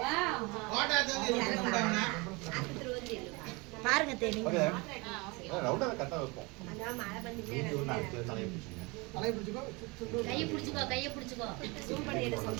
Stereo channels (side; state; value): left; quieter; 26.7 dB